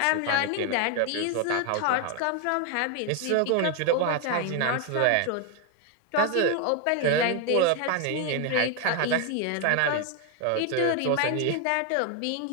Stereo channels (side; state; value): both; different; correlation 0.01